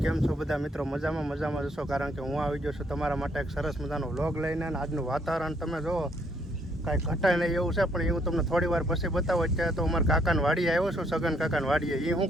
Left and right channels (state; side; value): normal; both; correlation 0.69